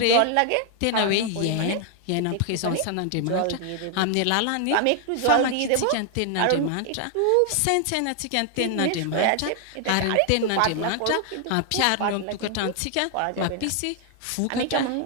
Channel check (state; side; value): different; both; correlation 0.00